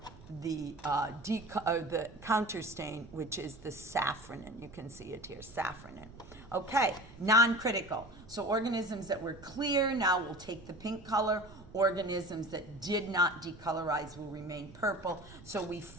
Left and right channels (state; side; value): noise; right; rumble, 19 dB below the sound